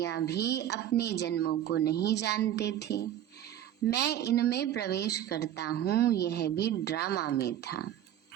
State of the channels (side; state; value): left; quieter; 11.3 dB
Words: भी अपने जन्मों को नहीं जानते थे। मैं इनमें प्रवेश करता हूँ, यह भी ड्रामा में था।